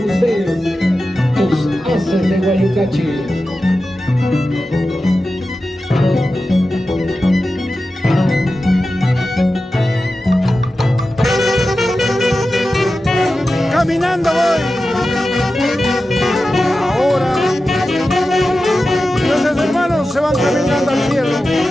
ustedes, los Haces de Guayucachi. Caminando voy. Ahora nuestros hermanos se van caminando al cielo.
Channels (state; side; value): normal; both; correlation 0.93